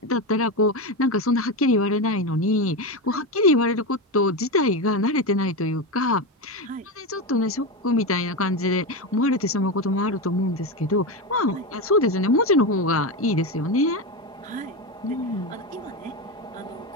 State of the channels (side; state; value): both; normal; correlation 0.15